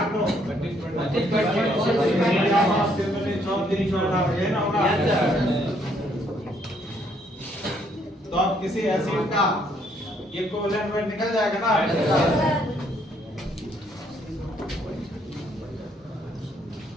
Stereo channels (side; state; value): both; normal; correlation 0.69